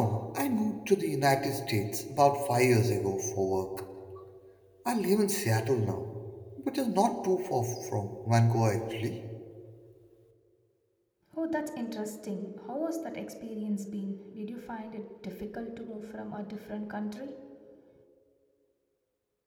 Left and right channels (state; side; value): identical; both; correlation 1.00